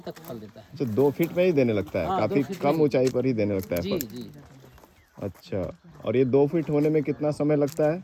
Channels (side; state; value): both; identical; correlation 1.00